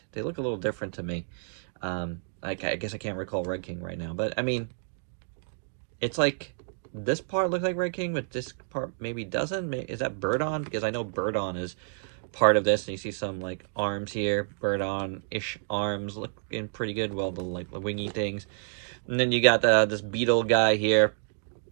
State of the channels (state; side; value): silent; left; digital silence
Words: They look a little different to me. I guess I can't recall Red King right now, but I mean, it's like, this part looks like Red King, but this part maybe doesn't. Is that Birdon? Because I know Birdon is part of this, and you see some, like, arms here. Birdon-ish arms looking pretty good. Well, the, like, the wingy things. And then you got this beetle guy here.